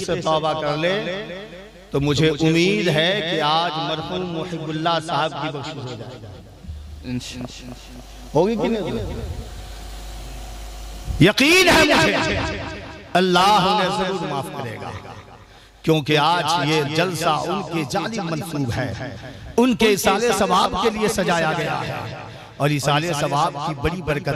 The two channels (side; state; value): both; identical; correlation 1.00